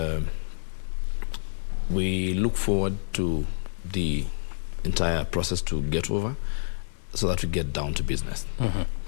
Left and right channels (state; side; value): silent; right; 59 dB below the other